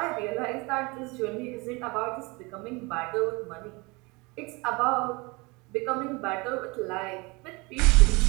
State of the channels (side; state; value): left; quieter; 26.4 dB